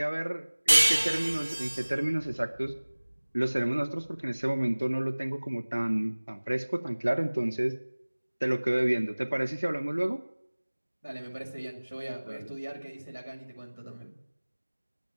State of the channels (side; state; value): both; inverted; correlation -1.00